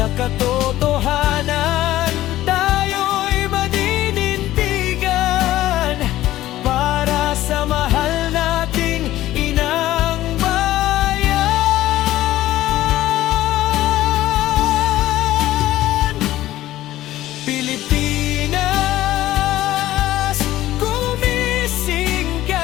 katotohanan tayo'y madinindigan, para sa mahal nating inang Pilipinas. Gumising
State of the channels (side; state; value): right; quieter; 14.8 dB